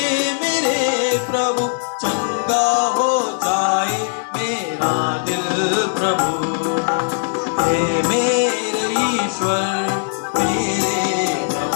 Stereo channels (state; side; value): silent; right; digital silence